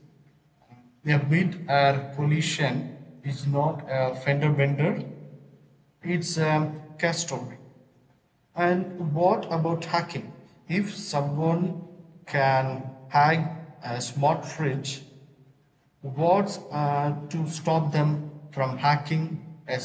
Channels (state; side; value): identical; both; correlation 1.00